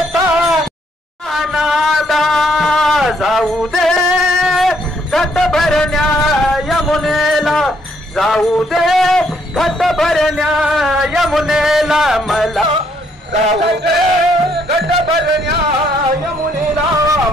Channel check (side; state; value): both; normal; correlation 0.70